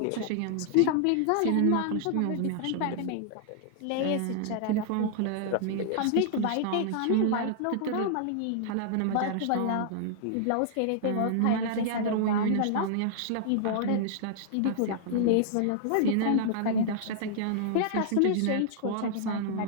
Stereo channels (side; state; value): both; different; correlation -0.01